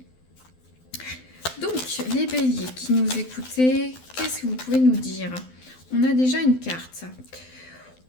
Donc, les béliers qui nous écoutez, qu'est-ce que vous pouvez nous dire? On a déjà une carte.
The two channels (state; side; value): late; right; 12 ms